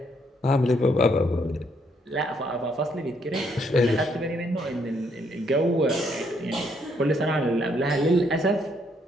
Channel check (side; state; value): both; normal; correlation 0.71